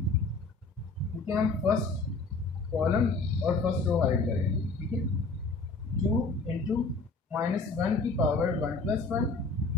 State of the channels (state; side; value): quieter; right; 3.7 dB